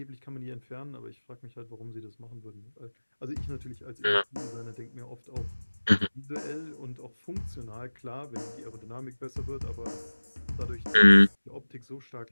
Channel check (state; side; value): inverted; both; correlation -1.00